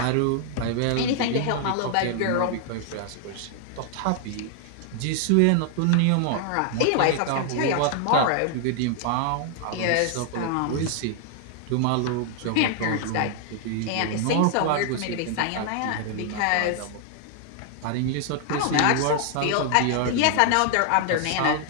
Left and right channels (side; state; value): both; different; correlation 0.00